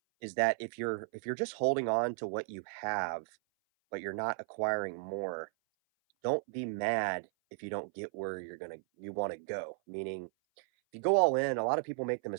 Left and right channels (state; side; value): silent; left; 55 dB below the other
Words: is that if you're just holding on to what you have, but you're not acquiring more, don't be mad if you don't get where you want to go. Meaning, if you go all in, a lot of people make the